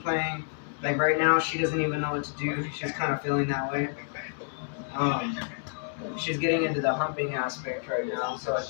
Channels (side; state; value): right; silent; digital silence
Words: playing. Like right now, she doesn't even know what to do. She's kind of feeling that way. She's getting into the humping aspect right now, so I